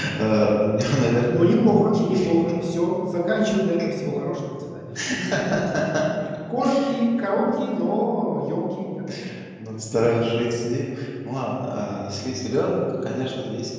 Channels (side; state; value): both; identical; correlation 1.00